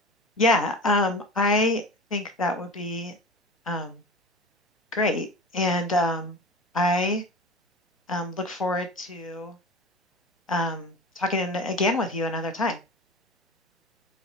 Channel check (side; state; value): both; normal; correlation 0.33